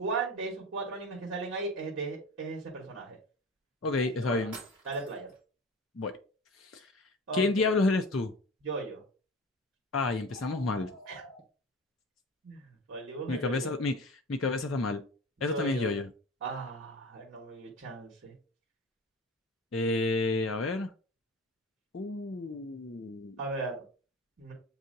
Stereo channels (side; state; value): both; normal; correlation 0.35